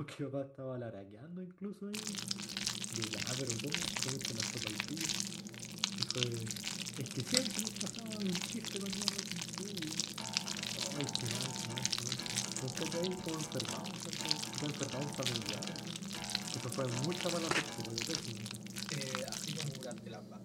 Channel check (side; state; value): both; identical; correlation 1.00